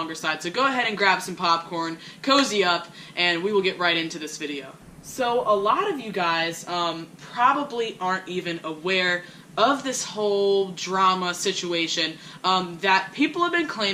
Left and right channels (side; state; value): both; identical; correlation 1.00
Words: side, so go ahead and grab some popcorn, cozy up, and we will get right into this video. So a lot of you guys probably aren't even aware of this whole drama situation, that people have been